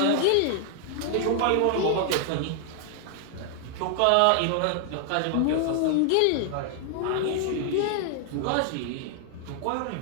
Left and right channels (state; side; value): different; both; correlation 0.00